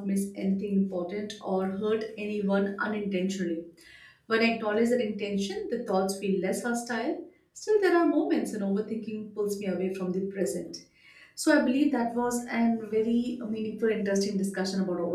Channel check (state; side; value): identical; both; correlation 1.00